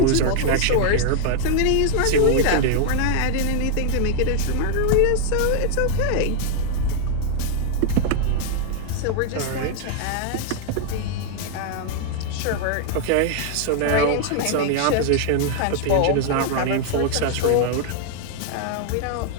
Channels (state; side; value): different; both; correlation 0.00